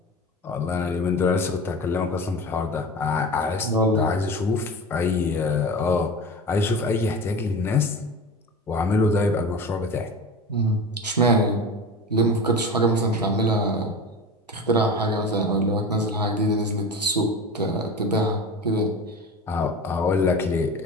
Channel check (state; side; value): normal; both; correlation 0.31